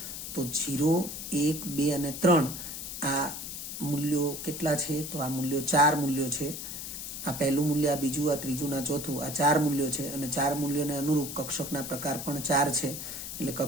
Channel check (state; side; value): noise; left; hiss, 7 dB below the sound